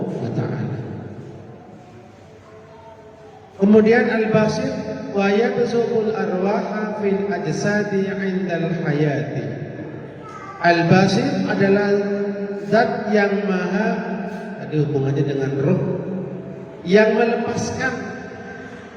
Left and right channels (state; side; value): identical; both; correlation 1.00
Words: wa ta'ala. Kemudian al-basir wa yabsuqul arwaha fil ajsadi 'indal hayati. Al-basir adalah zat yang maha, ada hubungannya dengan roh, yang melepaskan,